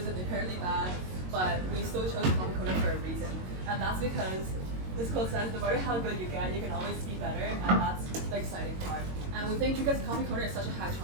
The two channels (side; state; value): left; late; 22 ms